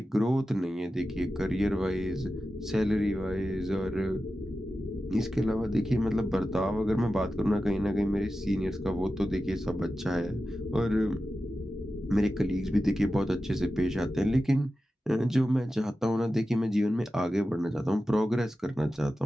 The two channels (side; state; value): both; normal; correlation 0.93